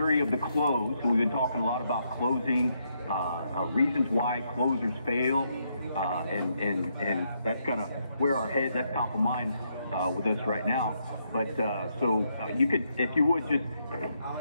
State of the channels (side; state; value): both; inverted; correlation -0.77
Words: of the close. So we've been talking a lot about closing, reasons why closers fail, and that's kind of where our head, that's top of mind with us right now. But so you could, if you would, just